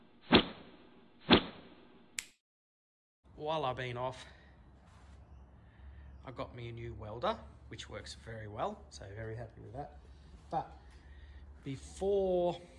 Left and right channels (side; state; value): both; identical; correlation 1.00